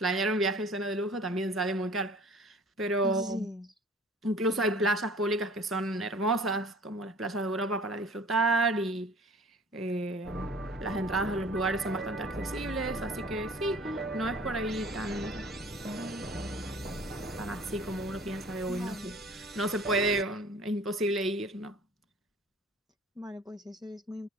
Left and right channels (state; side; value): normal; both; correlation 0.48